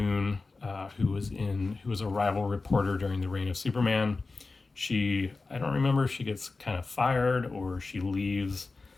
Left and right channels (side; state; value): right; quieter; 3.8 dB